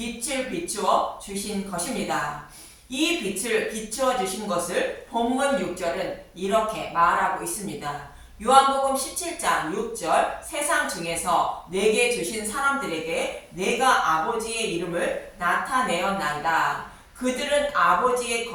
비추어 주신 것입니다. 이 빛을 비추어 주신 것을 본문 6절은 이렇게 말하고 있습니다. 요한복음 17장 6절 세상 중에서 내게 주신 사람들에게 내가 아버지의 이름을 나타내었나이다. 그들은 아버지의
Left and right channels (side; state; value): both; identical; correlation 1.00